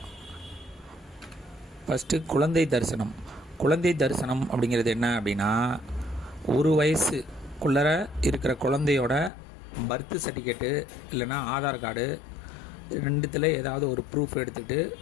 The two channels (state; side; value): drops out; right; at 9.3 s